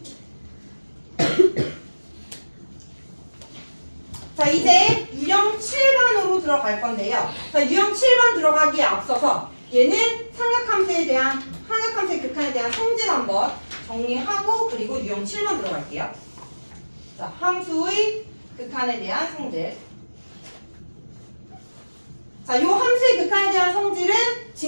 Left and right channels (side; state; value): both; inverted; correlation -1.00